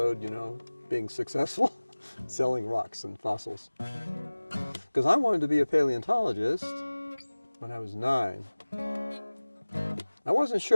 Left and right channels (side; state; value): both; inverted; correlation -1.00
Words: you know, being successful, selling rocks and fossils. Because I wanted to be a paleontologist when I was 9. I wasn't